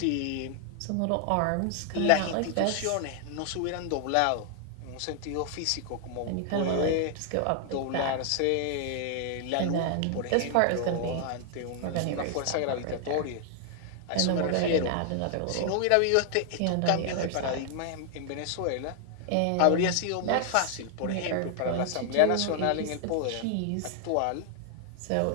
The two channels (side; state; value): both; different; correlation 0.00